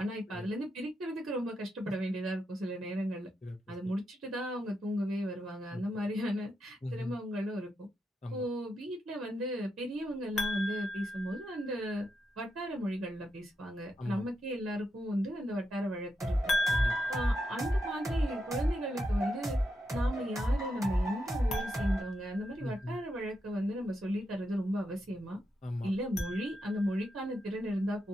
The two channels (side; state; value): both; normal; correlation 0.84